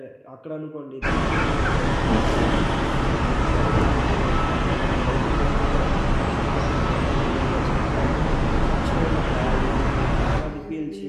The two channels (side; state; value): both; identical; correlation 1.00